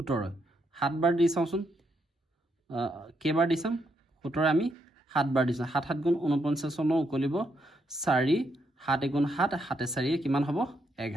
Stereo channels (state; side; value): normal; both; correlation 0.78